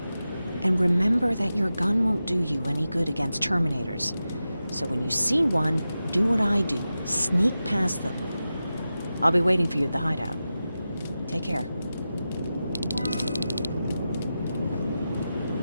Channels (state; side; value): inverted; both; correlation -0.93